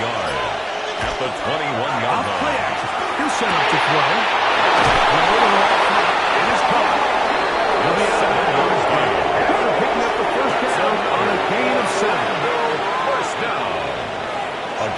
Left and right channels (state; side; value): identical; both; correlation 1.00